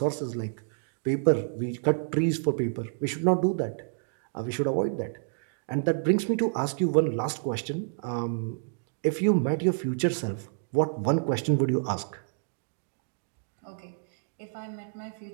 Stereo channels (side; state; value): left; silent; digital silence